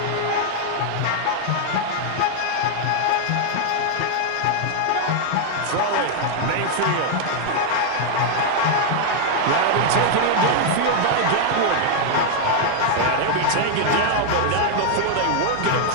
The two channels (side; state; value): both; different; correlation 0.00